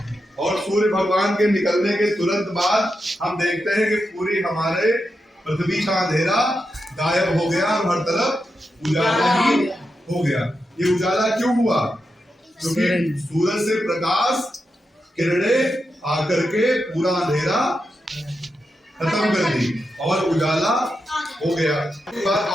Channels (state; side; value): normal; both; correlation 0.87